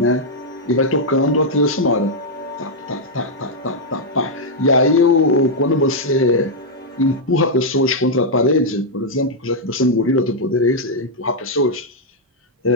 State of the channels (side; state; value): both; normal; correlation -0.03